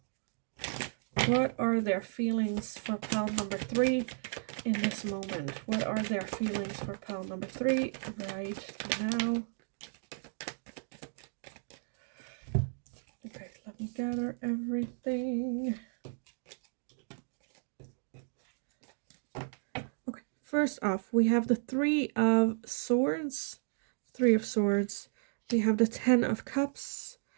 What are their feelings for pile number 3 in this moment? What are their feelings for pile number 3 right now? Okay, let me gather everything. Okay, first off, we have the Three of Swords. Three of Swords. We have the Ten of Cups.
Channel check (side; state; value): left; silent; digital silence